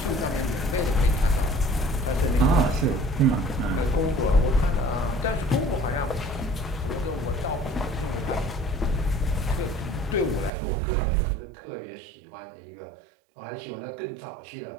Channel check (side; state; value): left; drops out; at 10.5 s